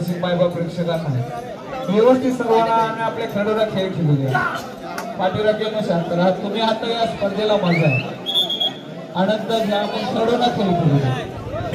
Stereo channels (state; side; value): identical; both; correlation 1.00